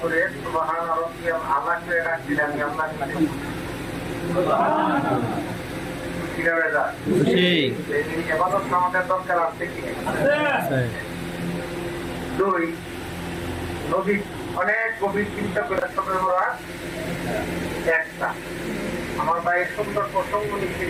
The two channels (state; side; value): identical; both; correlation 1.00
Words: সুবহান রাব্বিয়াল আলা করে রাখছেন। আমি আপনার কাছে খুশি। এবাদত আমাদের দরকার আছে কি? 2 নবী অনেক গভীর চিন্তা করে সবে ওরা একটা আমার ভাই সুন্দর প্রসঙ্গ